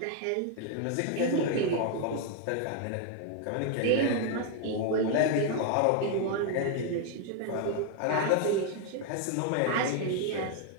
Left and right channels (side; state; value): both; different; correlation 0.00